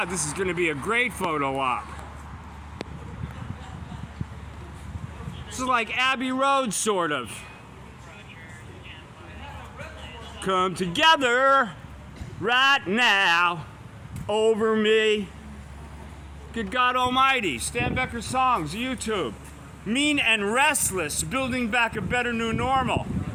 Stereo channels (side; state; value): both; identical; correlation 1.00